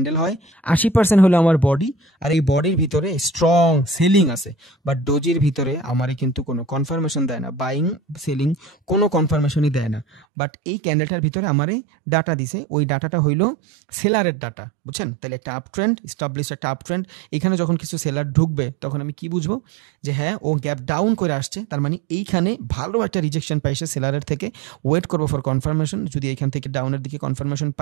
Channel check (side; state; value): left; drops out; at 10.2 s